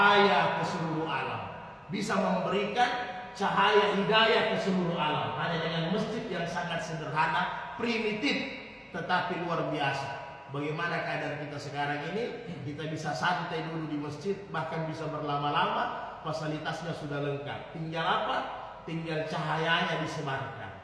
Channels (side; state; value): both; identical; correlation 1.00